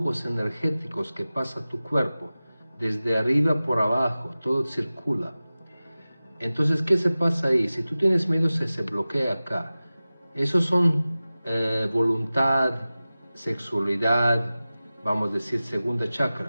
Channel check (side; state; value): both; inverted; correlation -0.97